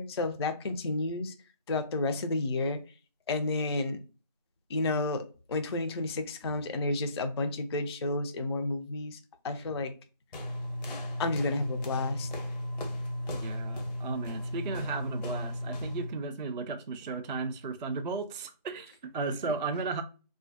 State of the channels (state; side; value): inverted; both; correlation -0.53